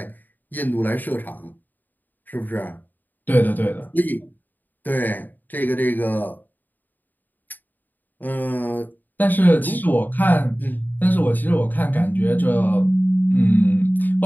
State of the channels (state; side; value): late; right; 0.087 ms